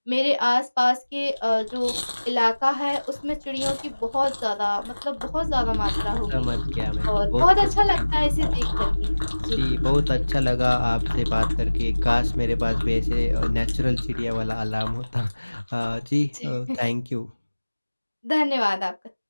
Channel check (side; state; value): both; inverted; correlation -1.00